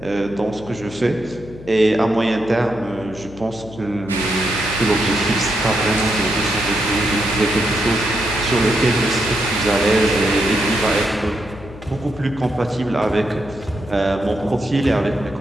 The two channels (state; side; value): noise; left; hum, 17 dB below the sound